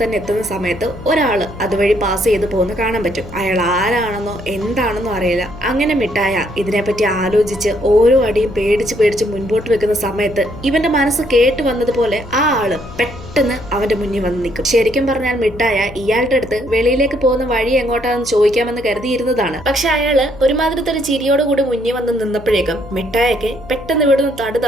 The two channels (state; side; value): noise; left; hum, 17 dB below the sound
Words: തന്നെ എത്തുന്ന സമയത്ത് ഒരാള് അതുവഴി പാസ് ചെയ്ത് പോകുന്ന കാണാൻ പറ്റും. അയാൾ ആരാണെന്നോ എന്താണെന്നോ അറിയില്ല. അങ്ങനെ മിഠായ ഇതിനെപ്പറ്റി ആലോചിച്ച് ഓരോ അടിയും പേടിച്ച് മുൻപോട്ട് വെക്കുന്ന സമയത്ത് ഇവന്റെ മനസ്സ് കേട്ട് വന്നതുപോലെ ആ ആള് പെട്ടെന്ന് അവന്റെ മുന്നിൽ വന്ന് നിൽക്കും. ശരിക്കും പറഞ്ഞാൽ മിഠായ ഇയാളുടെ അടുത്ത് വെളിയിലേക്ക് പോകുന്ന വഴി എങ്ങോട്ടാണെന്ന് ചോദിക്കാമെന്ന് കരുതിയിരുന്നതാണ്. പക്ഷെ അയാള് ഒരുമാതിരത്തെ ഒരു ചിരിയോടുകൂടി മുന്നിൽ വന്ന് നിന്നപ്പോഴേക്കും മിഠായക്ക് പെട്ടെന്ന് ഇവിടുന്ന് തടു